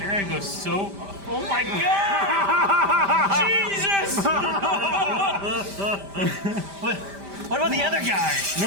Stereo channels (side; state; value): left; late; 5.0 ms